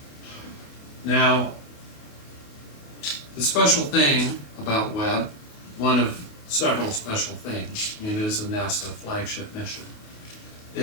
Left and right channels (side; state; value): right; late; 28 ms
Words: Now, the special thing about Webb, one of several special things, I mean, it is a NASA flagship mission,